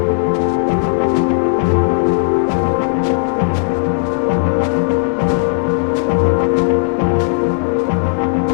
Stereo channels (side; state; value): right; silent; digital silence